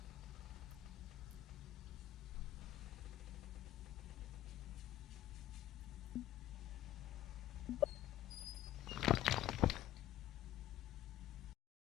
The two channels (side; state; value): right; quieter; 13.3 dB